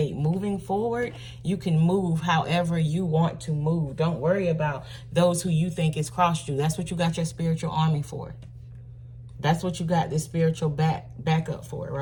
Moving forward, you can move however you want to move. Don't worry about those who you think has crossed you. That's what you got your spiritual army for. That's what you got this spiritual backup for,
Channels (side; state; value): both; identical; correlation 1.00